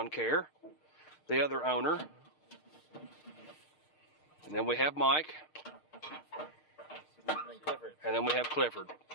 Care, the other owner. And then we have Mike. And then we have Clifford.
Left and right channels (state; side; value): late; right; 6.5 ms